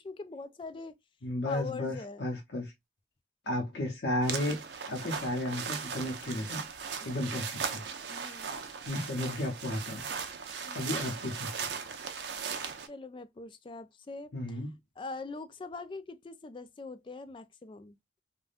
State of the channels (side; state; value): both; normal; correlation 0.34